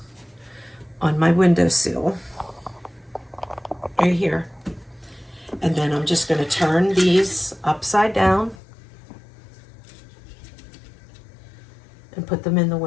on my windowsill. right here. And then I'm just going to turn these upside down and put them in the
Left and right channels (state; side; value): drops out; right; at 8.6 s